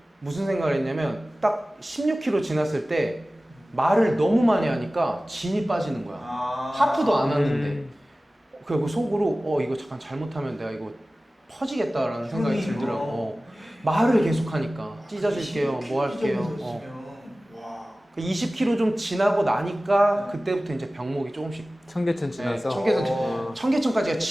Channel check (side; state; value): both; normal; correlation 0.97